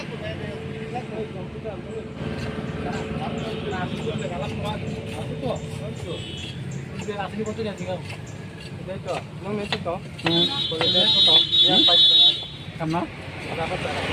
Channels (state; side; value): identical; both; correlation 1.00